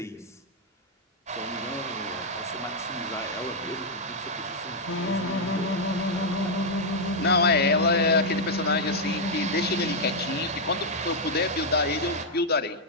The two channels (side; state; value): both; normal; correlation -0.02